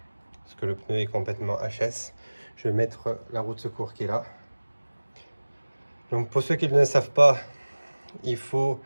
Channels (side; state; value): both; inverted; correlation -1.00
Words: Parce que le pneu est complètement HS. Je vais mettre la roue de secours qui est là. Donc pour ceux qui ne le savent pas, il faut